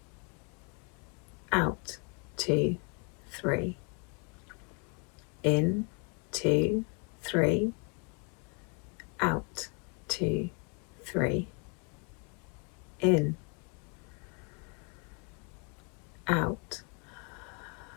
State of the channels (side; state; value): right; quieter; 33.6 dB